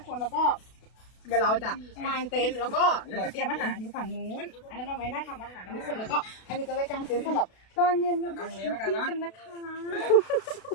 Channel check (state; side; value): late; right; 32 ms